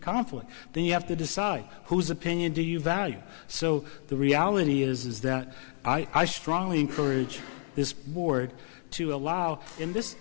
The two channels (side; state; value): right; silent; digital silence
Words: Then you have to decide whose opinion do you value. So the reality is that I strongly encourage this board to allow, and